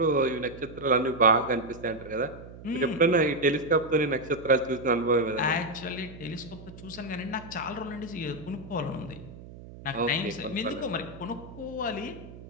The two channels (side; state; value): right; noise; hum, 16 dB below the sound